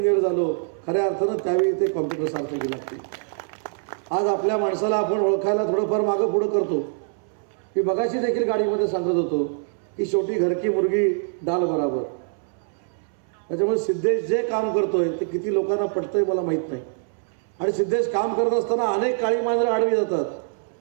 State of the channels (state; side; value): silent; left; 63 dB below the other